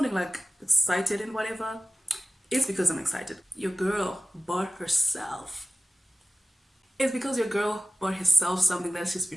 like excited and whatever. It's because I'm excited. Your girl bought herself. It's because your girl bought herself something that she's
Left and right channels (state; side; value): normal; both; correlation 0.96